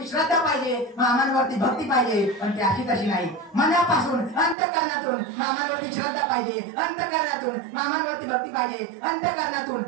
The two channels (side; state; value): left; drops out; at 4.5 s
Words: श्रद्धा पाहिजे, मामांवरती भक्ती पाहिजे. पण ती अशी तशी नाही. मनापासून अंतःकरणातून मामांवरती श्रद्धा पाहिजे, अंतःकरणातून मामांवरती भक्ती पाहिजे, अंतःकरणातून